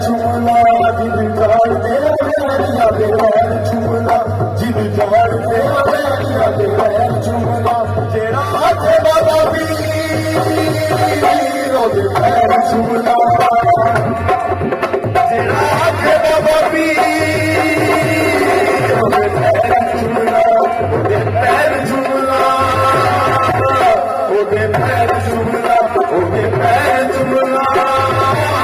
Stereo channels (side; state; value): both; identical; correlation 1.00